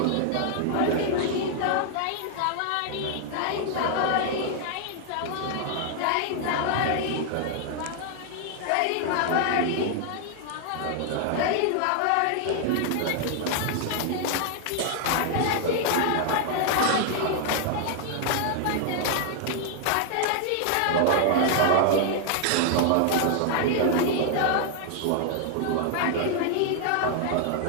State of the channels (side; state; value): both; different; correlation 0.00